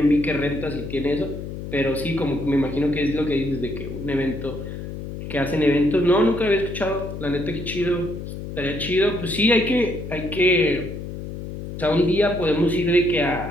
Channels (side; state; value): left; noise; hum, 8 dB below the sound